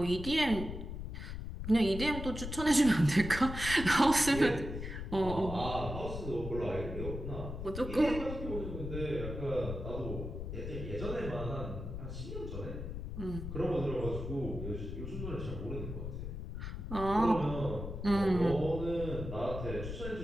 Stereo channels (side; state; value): left; noise; rumble, 7 dB below the sound